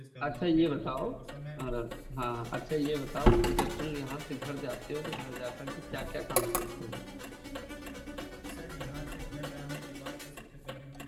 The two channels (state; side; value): identical; both; correlation 1.00